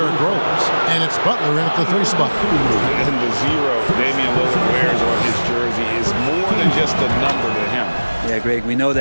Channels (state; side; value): inverted; both; correlation -1.00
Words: Rose, and it's Butler in at the 3 spot. And the 0 Damian Lillard wears on his jersey is more than just a number to him. Yeah, Greg, we know